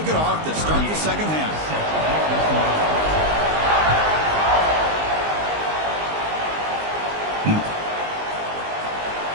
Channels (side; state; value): left; late; 19 ms